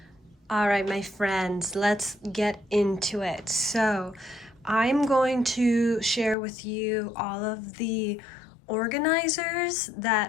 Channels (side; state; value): right; drops out; at 6.4 s